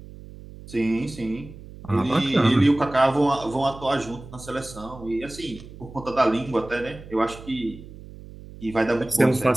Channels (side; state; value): right; noise; hum, 16 dB below the sound